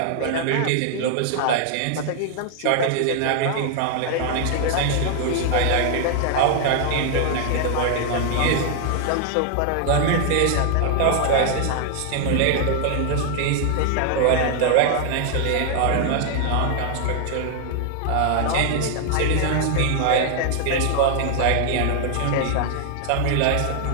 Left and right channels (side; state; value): both; different; correlation 0.00